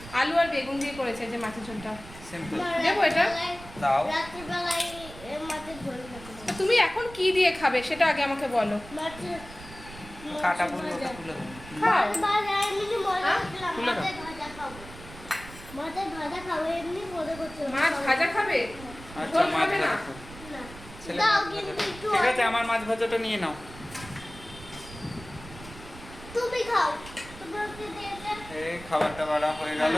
আলু আর বেগুন দিয়ে করেছে যে মাছের ঝোলটা। সিম্পল। দেবো এটা? দাও। তুমি এখন কি দিয়ে খাবে সেটা আগে আমাকে বলো। কাটা বলবো, ওটা তুলে দেবো। খাও। মাছ ভাজা খাবে? আচ্ছা ঝোল মাছ খাবে না? ভাজা খাও। ছেলে মাছ ভাজা খাও। ঠিক আছে, আমার মাছ ভাজাটা নিয়ে নাও। তুমি খাও। এই খাবারটা বাড়া হয়ে গেল।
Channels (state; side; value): noise; right; rumble, 16 dB below the sound